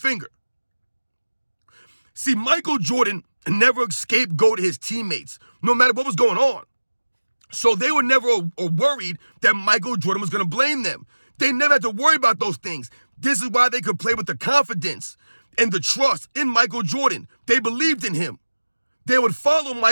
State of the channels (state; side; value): inverted; both; correlation -1.00